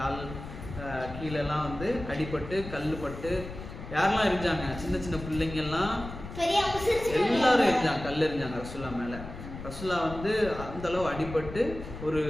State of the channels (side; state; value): left; noise; rumble, 11 dB below the sound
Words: கீழெல்லாம் வந்து அடிபட்டு கல்லுப்பட்டு. யாரெல்லாம் எரிஞ்சாங்க, சின்ன சின்ன பிள்ளைங்கெல்லாம் எல்லாரும் எரிஞ்சாங்க, கல் எரிஞ்சாங்க ரசூல்லா மேலே. ரசூல்லா வந்து அந்த அளவு அடிபட்டு ஒரு